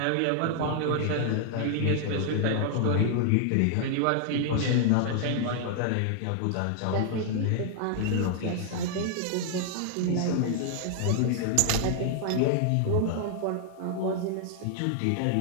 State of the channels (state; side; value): different; both; correlation 0.00